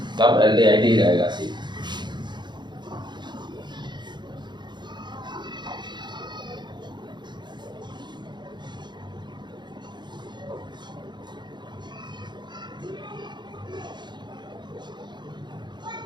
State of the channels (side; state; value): left; late; 0.22 ms